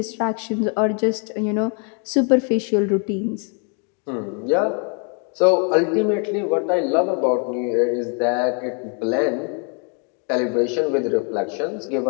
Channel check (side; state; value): right; quieter; 39.7 dB